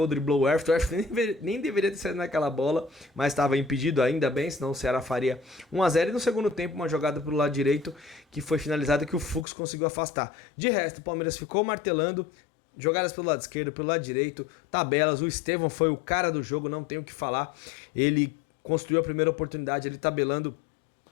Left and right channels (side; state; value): right; drops out; at 9.5 s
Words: driblou o Everton nem deveria ter saído naquela bola, mas estava impedido ainda bem, senão o Ceará faria 1-0, e no segundo tempo uma jogada pelo lado direito, que foi finalizada, que o Fux conseguiu afastar. De resto, o Palmeiras ficou martelando, jogadas pelo lado esquerdo, pelo lado direito, tabelas. O Estevão foi o cara do jogo, não tenho o que falar. Ele construiu a primeira oportunidade, ele tabelando,